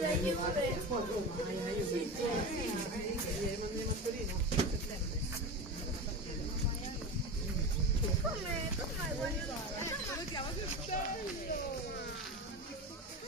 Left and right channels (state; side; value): normal; both; correlation 0.25